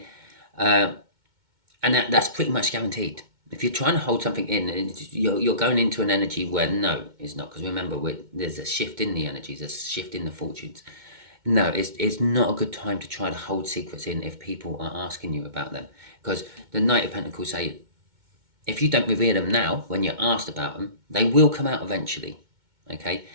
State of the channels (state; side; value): late; left; 2.2 ms